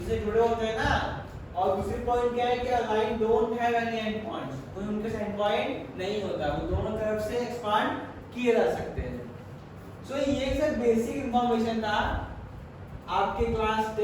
से जुड़े होते हैं ना। और दूसरी पॉइंट क्या है कि a line don't have any and points, कोई उनके एंड पॉइंट नहीं होता, वो दोनों तरफ से एक्सपांड किए जा सकते हैं। सो ये सब बेसिक इंफॉर्मेशन था, आपके क्लास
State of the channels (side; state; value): both; identical; correlation 1.00